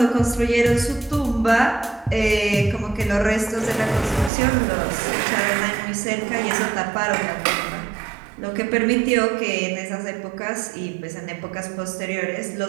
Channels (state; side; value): drops out; left; at 4.3 s